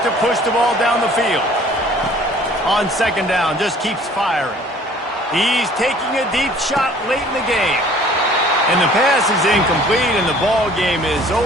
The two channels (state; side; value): normal; both; correlation 0.52